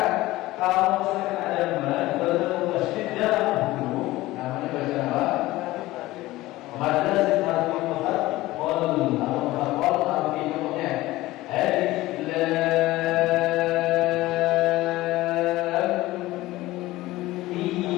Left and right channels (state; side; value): quieter; right; 17.9 dB